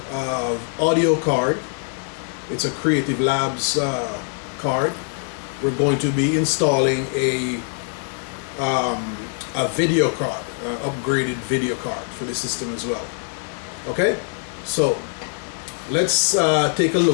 audio card. It's a Creative Labs card. We're going to be installing a video card, upgraded video card for the system as well. Okay, so let's take a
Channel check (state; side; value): silent; right; 56 dB below the other